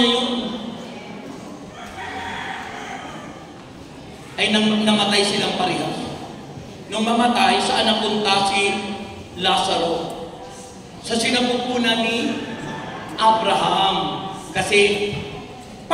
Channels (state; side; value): identical; both; correlation 1.00